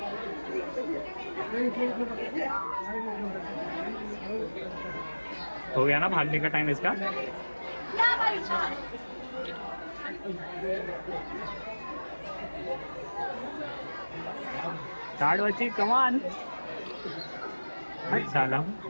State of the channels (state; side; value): inverted; both; correlation -1.00